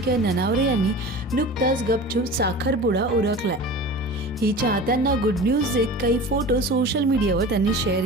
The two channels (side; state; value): both; normal; correlation 0.35